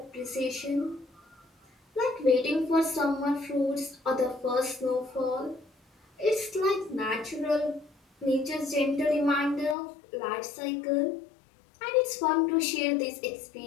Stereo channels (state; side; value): drops out; right; at 9.8 s